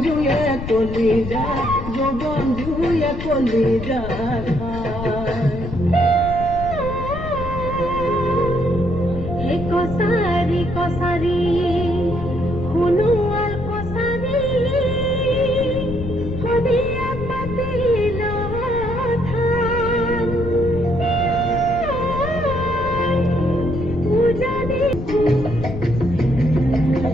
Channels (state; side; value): noise; left; rumble, 7 dB below the sound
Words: কলিজা জবন্ধুয়ে কলিজা খায়